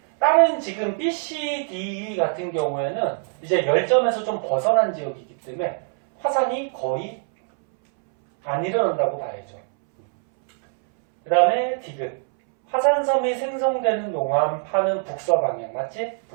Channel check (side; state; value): left; silent; 63 dB below the other